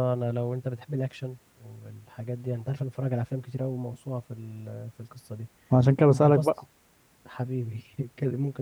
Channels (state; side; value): identical; both; correlation 1.00